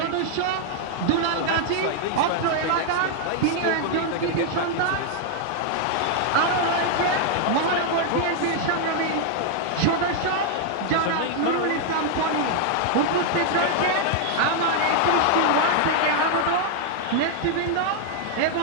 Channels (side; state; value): both; different; correlation 0.00